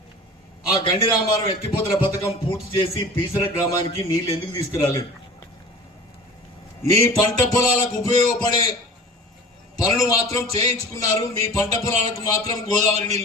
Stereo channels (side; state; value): both; normal; correlation 0.39